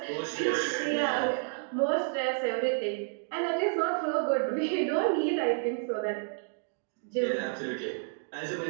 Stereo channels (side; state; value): left; silent; 58 dB below the other